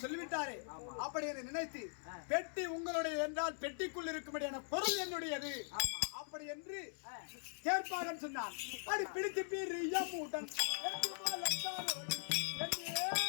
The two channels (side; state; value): right; silent; digital silence